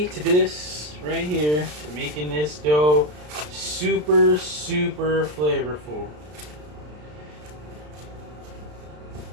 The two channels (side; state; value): left; late; 33 ms